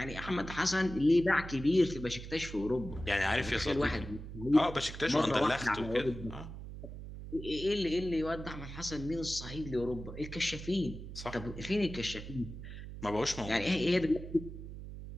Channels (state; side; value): noise; right; hum, 10 dB below the sound